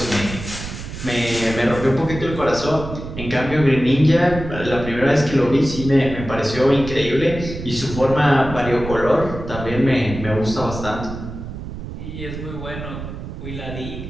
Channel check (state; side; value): noise; right; rumble, 9 dB below the sound